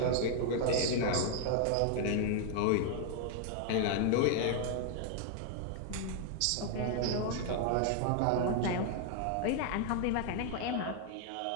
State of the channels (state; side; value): different; both; correlation 0.00